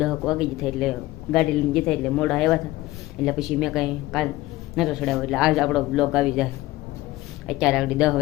વાગી જતા, એટલે ગાડી લઈને જતા એટલે મોડા આવ્યા હતા. એટલે પછી મેં કાંઈ કાલ નહોતો ચડાવ્યો, એટલે આજ આપણો બ્લોગ આવી જાય. અત્યારે આગળ 10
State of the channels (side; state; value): right; quieter; 17.6 dB